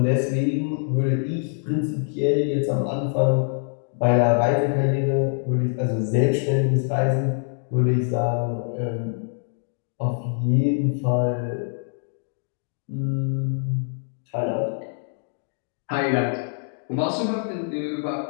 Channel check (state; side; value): silent; right; 62 dB below the other